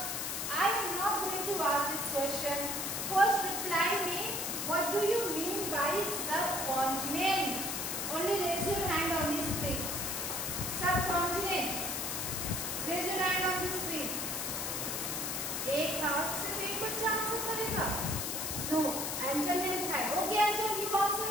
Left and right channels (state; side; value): noise; left; hiss, 2 dB below the sound